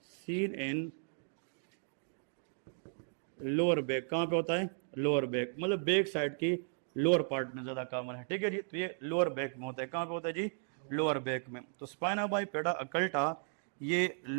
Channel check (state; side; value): silent; left; digital silence